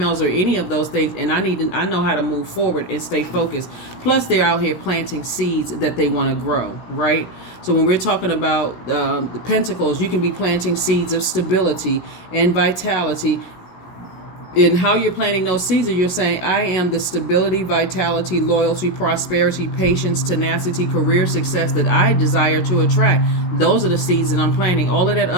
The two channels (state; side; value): late; right; 16 ms